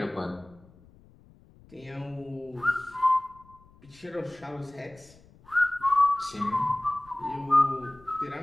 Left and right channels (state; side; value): noise; left; rumble, 26 dB below the sound